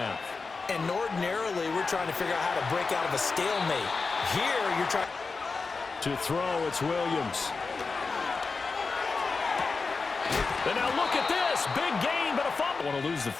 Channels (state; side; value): quieter; right; 4.3 dB